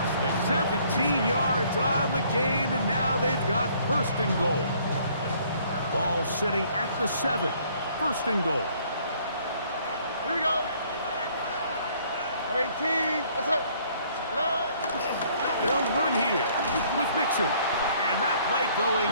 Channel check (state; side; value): inverted; both; correlation -0.61